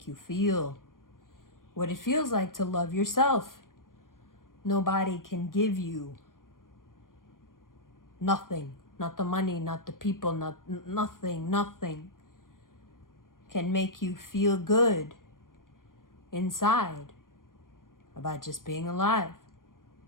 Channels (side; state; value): right; late; 0.90 ms